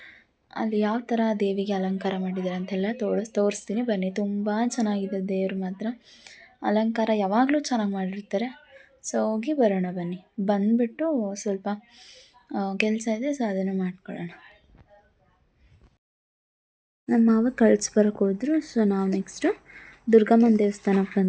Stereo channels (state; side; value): identical; both; correlation 1.00